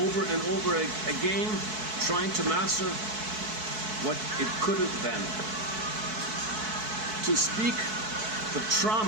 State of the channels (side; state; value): left; late; 4.6 ms